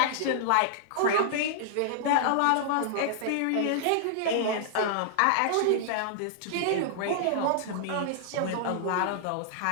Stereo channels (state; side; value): different; both; correlation -0.01